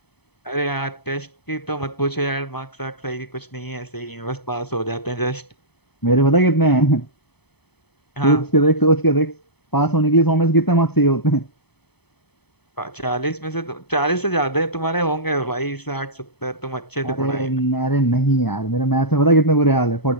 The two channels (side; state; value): right; late; 0.98 ms